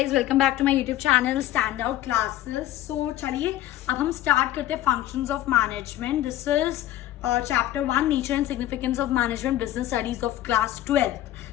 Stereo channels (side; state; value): right; quieter; 14.0 dB